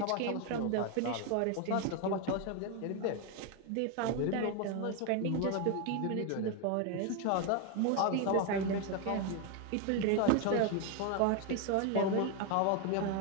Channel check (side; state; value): both; different; correlation 0.01